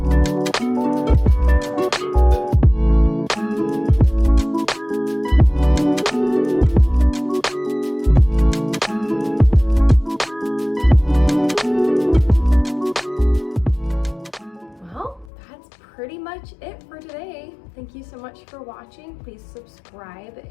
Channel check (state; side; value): drops out; right; at 15.3 s